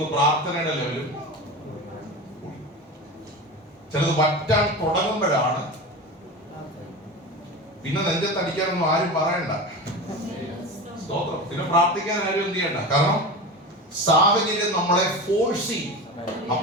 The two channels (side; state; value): both; normal; correlation 0.27